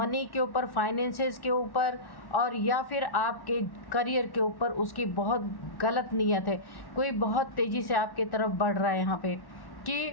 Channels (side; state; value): right; late; 1.1 ms